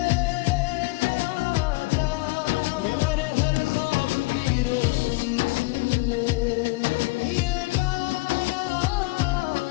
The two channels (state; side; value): quieter; right; 23.3 dB